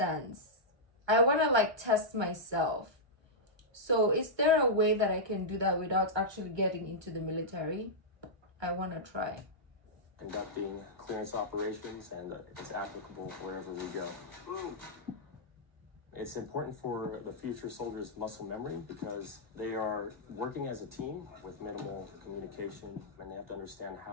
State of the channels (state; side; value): late; left; 1.3 ms